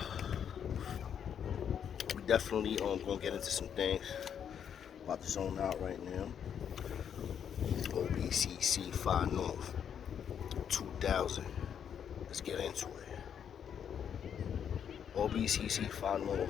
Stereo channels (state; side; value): quieter; right; 8.3 dB